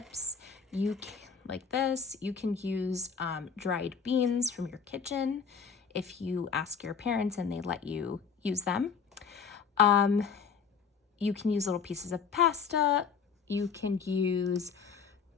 Like this. You can use dried beans from your kitchen if you ask your parents and they let you use them. You can use little pieces of pasta. You can use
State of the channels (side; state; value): right; quieter; 6.2 dB